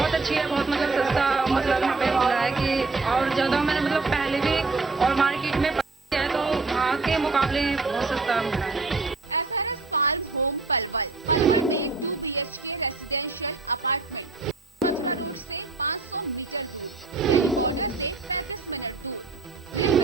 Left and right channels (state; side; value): quieter; left; 3.8 dB